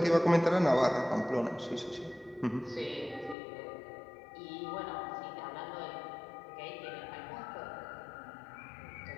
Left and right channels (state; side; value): drops out; right; at 3.4 s